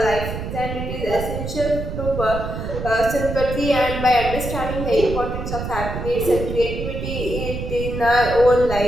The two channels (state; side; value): noise; right; rumble, 6 dB below the sound